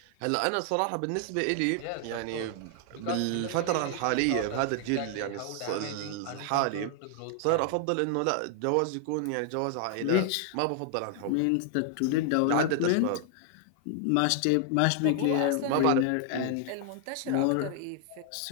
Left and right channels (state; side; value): different; both; correlation 0.00